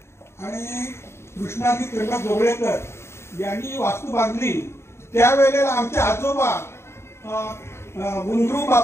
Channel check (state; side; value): late; right; 0.13 ms